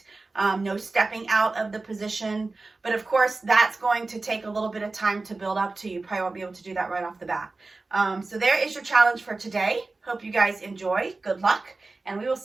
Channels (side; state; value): left; quieter; 3.5 dB